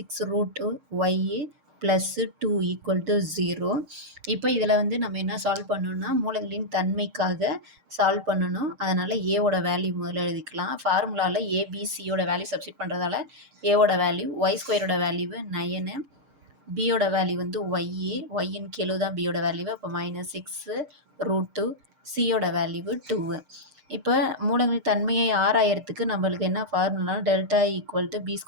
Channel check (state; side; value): late; left; 6.6 ms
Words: + 2 = 0. இப்போ இதில் வந்து நம்ம என்ன சால்வ் பண்ணணும்னா மூலங்களின் தன்மைக்காக சால்வ் பண்ணணும். அதனால் ஏவோட வேல்யூ முதல்ல எழுதிக்கலாம். ஃபார்முலாவில் ஏபிசியோட வேல்யூ சப்ஸ்டிட் பண்ணுறதால ஏவோட வேல்யூ y² வேல்யூ 9, பியோட வேல்யூ வந்து ஒய்யின் கெழு தான் பியோட வேல்யூ. அப்போ -6√2, சியோட வேல்யூ 2. இப்போ மூலங்களின் தன்மையை ஆராயறதுக்கு நம்மளுக்கு என்ன ஃபார்முலா டெல்டா = b² -